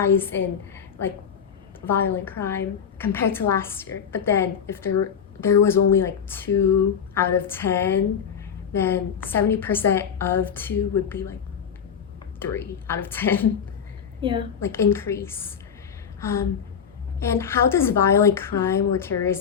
in like violent crime compared to last year. But then if there was only like 2 out of 10, then 70% of 2 would be like 3 out of 10. Yeah. Like increase. And how does violent crime or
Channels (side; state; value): right; quieter; 7.5 dB